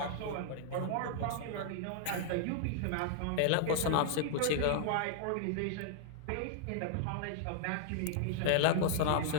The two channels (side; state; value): both; different; correlation -0.01